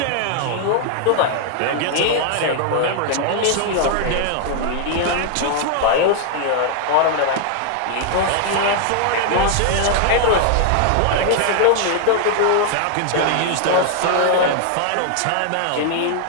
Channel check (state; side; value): different; both; correlation 0.00